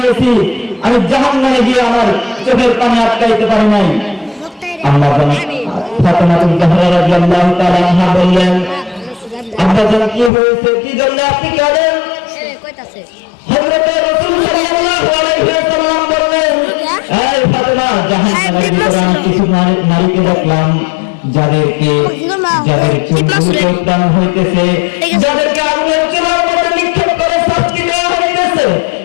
আমি জাহান্নামে গিয়ে আমার চোখের পানি আটকাইতে পারি নাই। আম্মাজান ফাতেমাতুল জাহরা রাদিয়াল্লাহু তাআলা আনহা বললেন, আম্মাজান কি হয়েছে, কি জন্য আপনি কাঁদেন? হযরত রাসূল সাল্লাল্লাহু আলাইহি ওয়াসাল্লাম বললেন, এই ফাতেমা, জাহান্নামের ভিতরে আমি কিছু নারীকে দেখলাম যাদেরকে চুলগুলো উত্তান হইতেছে, যাদেরকে আগুনের চুলার মধ্যে নিক্ষেপ করে শাস্তি দেওয়া হইতেছে।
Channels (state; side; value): drops out; right; at 10.3 s